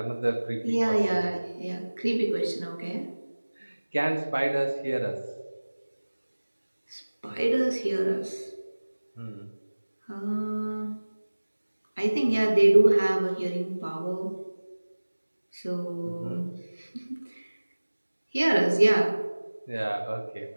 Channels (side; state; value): both; inverted; correlation -1.00